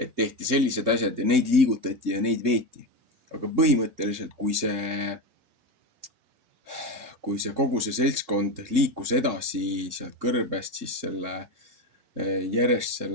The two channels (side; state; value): left; late; 3.7 ms